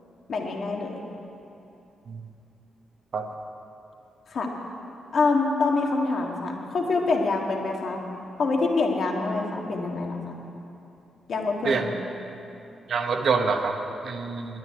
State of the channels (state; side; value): normal; both; correlation 0.81